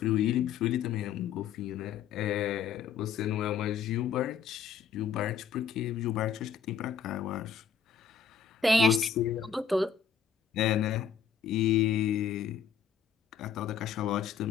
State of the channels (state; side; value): quieter; right; 7.1 dB